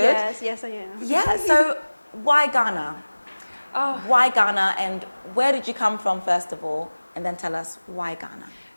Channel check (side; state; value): both; inverted; correlation -1.00